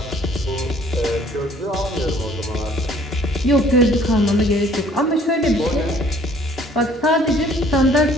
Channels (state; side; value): normal; both; correlation 0.57